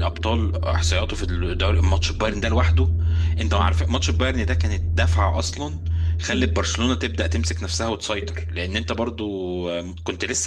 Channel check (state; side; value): identical; both; correlation 1.00